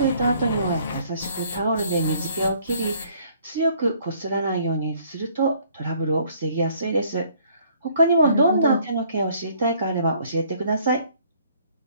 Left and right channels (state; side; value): inverted; both; correlation -0.61